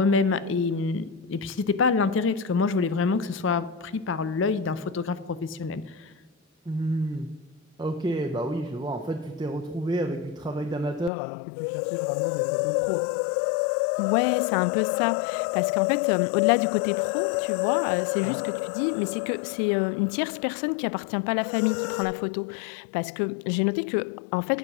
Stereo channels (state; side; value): drops out; right; at 11.1 s